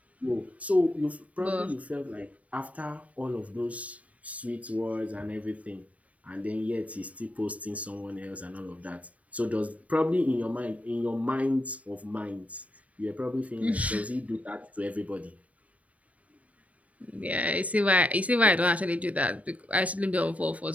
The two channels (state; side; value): late; left; 0.068 ms